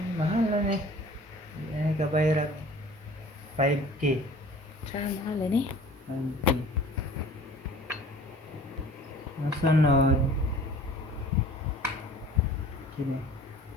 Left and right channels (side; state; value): both; normal; correlation 0.47